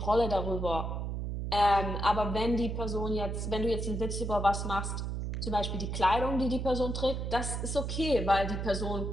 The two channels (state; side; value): noise; right; hum, 3 dB below the sound